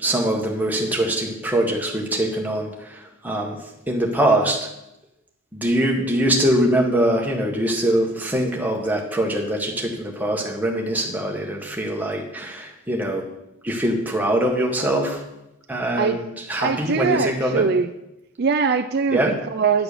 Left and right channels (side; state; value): both; normal; correlation 0.45